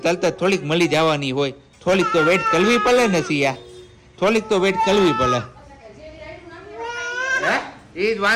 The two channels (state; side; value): identical; both; correlation 1.00